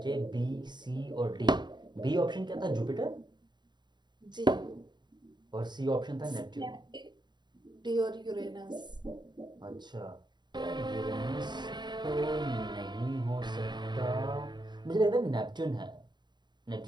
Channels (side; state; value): left; late; 0.21 ms